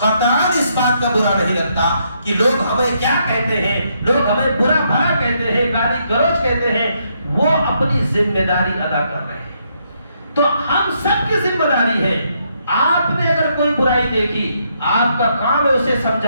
اس بات کا برا نہیں لگتا کہ لوگ ہمیں کیا کہتے ہیں, لوگ ہمیں برا بھلا کہتے ہیں, گالی گلوچ کہتے ہیں. وہ اپنی ذمہ داری ادا کر رہے ہیں. تو ہم سب کی ذمہ داری ہے. آپ نے اگر کوئی برائی دیکھی, آپ کا کام ہے اسے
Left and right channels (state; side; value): inverted; both; correlation -0.75